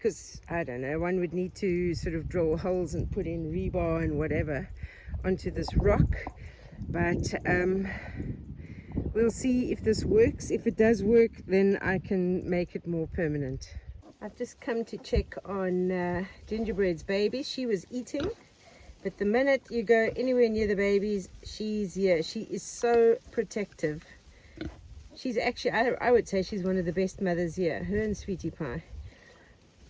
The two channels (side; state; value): both; identical; correlation 1.00